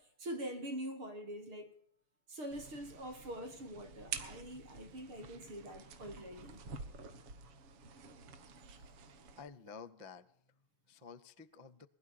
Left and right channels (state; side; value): late; left; 6.6 ms